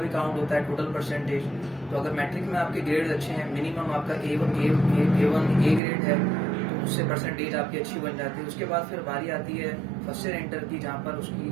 काउंट होता है टोटल परसेंटेज। तो अगर मैट्रिक में आपके ग्रेड अच्छे हैं, मिनिमम आपका A1 ग्रेड है, तो उससे परसेंटेज आपकी अच्छी बन जाती है। उसके बाद फिर बारी आती है फर्स्ट ईयर इंटर की, जहाँ पर उसकी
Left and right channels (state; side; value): drops out; left; at 5.8 s